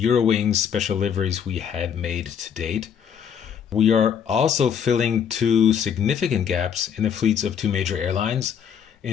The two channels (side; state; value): right; quieter; 7.9 dB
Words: special liveries we had made to date. We are also filling two significant gaps in the fleets of two major airlines.